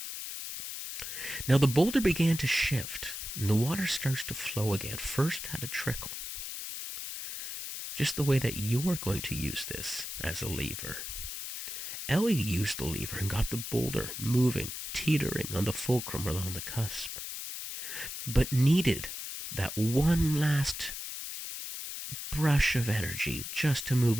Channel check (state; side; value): noise; left; hiss, 7 dB below the sound